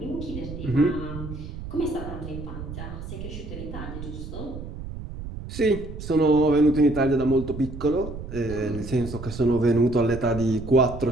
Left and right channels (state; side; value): noise; right; rumble, 9 dB below the sound